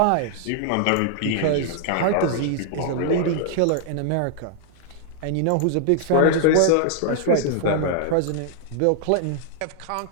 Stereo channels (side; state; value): both; different; correlation -0.01